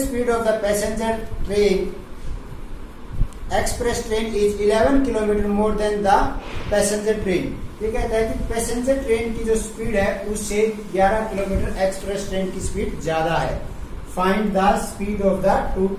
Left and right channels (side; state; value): both; identical; correlation 1.00